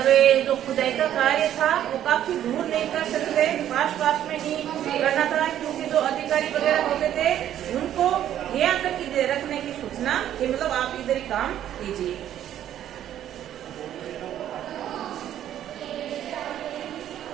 ये जो खुदाई का कार्य था वो काफी दूर नहीं कर सकते, पास में ही करना था, क्योंकि जो अधिकारी वगैरह होते थे उनको यहाँ तक रखने की सूचना कि मतलब आप इधर ही काम कीजिए।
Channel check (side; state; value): left; quieter; 11.2 dB